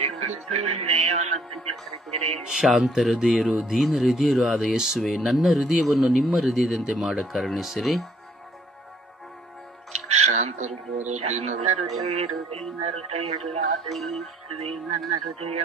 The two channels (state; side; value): normal; both; correlation 0.63